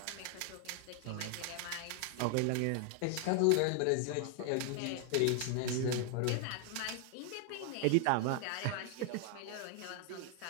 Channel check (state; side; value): different; both; correlation 0.00